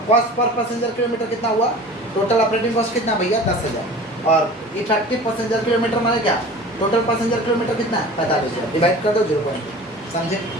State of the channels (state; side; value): normal; both; correlation 0.40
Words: कॉस्ट पर पैसेंजर किलोमीटर कितना हुआ, टोटल ऑपरेटिंग कॉस्ट कितना भैया 10,000, और इफेक्टिव पैसेंजर किलोमीटर माने क्या, टोटल पैसेंजर किलोमीटर कितना है 45,000, डिवाइड कर दो 0.2, समझे,